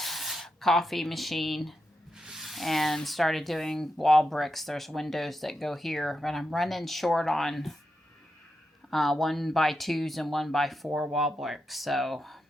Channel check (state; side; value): normal; both; correlation 0.86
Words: coffee machine, and started doing wall bricks. There's windows that go here, but I'm running short on 1x2s and 1x4 wall bricks, so